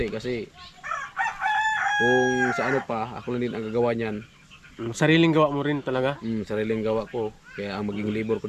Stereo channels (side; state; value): both; identical; correlation 1.00